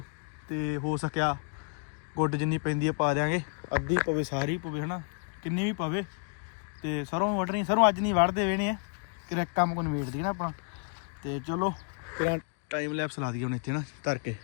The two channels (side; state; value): right; quieter; 36.7 dB